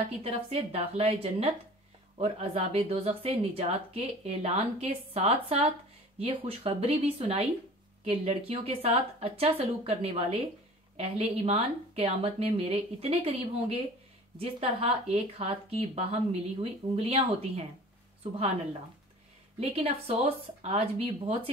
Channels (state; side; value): normal; both; correlation 0.44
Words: की तरफ से दाखिला जन्नत और अजाब दोज़ख से निजात के ऐलान के साथ साथ ये खुशखबरी भी सुनाई कि लड़कियों के साथ अच्छा सलूक करने वाले अहले ईमान क़यामत में मेरे इतने करीब होंगे जिस तरह एक हाथ की बाहम मिली हुई उंगलियां होती हैं। सुभान अल्लाह। लेकिन अफसोस, आज भी बहुत